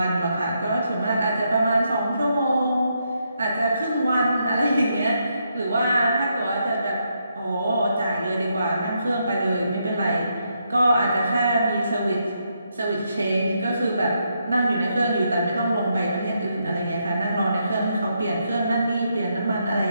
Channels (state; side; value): inverted; both; correlation -0.79